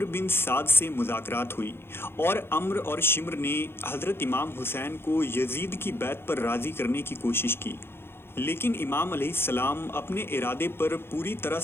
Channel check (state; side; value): late; right; 0.11 ms